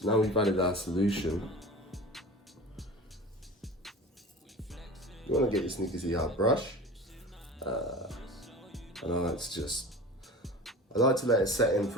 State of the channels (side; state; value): both; normal; correlation 0.36